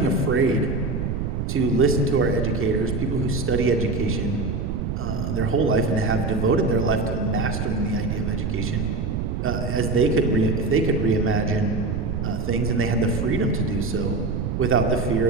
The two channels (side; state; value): right; noise; rumble, 2 dB below the sound